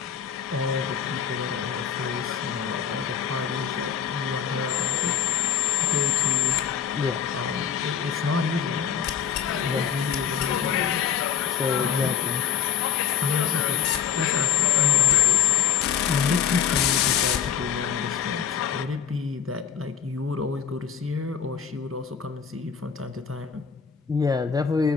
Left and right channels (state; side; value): quieter; right; 8.0 dB